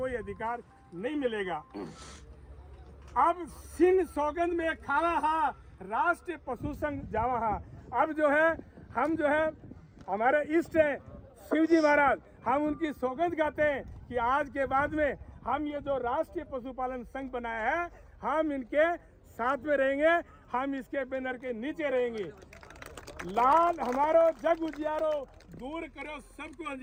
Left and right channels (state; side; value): identical; both; correlation 1.00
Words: अधिकार नहीं मिलेगा। अब सिंह सौगंध में खावा हा, राष्ट्रीय पशु संघ जावा हा। अब जो है हम जो है हमारे इष्ट है शिवजी महाराज, हम उनकी सौगंध गाते हैं कि आज के बाद में हम ये जो राष्ट्रीय पशुपालन संघ बनाया है हम इनके साथ में रहेंगे, हम इसके बैनर के नीचे रहेंगे। लाल हमारो जग उजियारो, दूर करो सबको